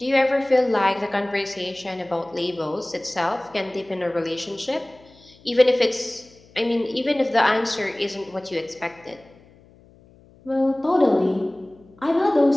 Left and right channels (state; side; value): noise; left; hum, 27 dB below the sound